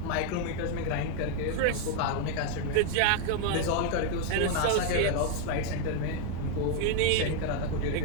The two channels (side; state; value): both; different; correlation 0.00